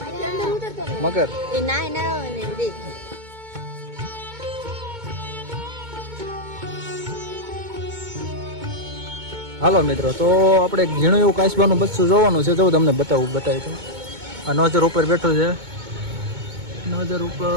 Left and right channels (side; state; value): left; late; 2.2 ms